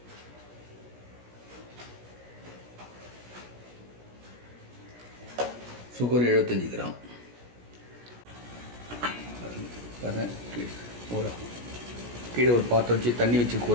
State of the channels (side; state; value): left; late; 17 ms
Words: Sugar 75 gram. கீழே ஒரு பாத்திரம் வச்சு தண்ணி வச்சு